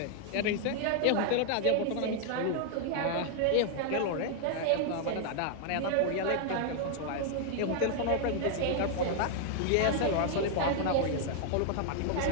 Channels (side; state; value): both; different; correlation 0.00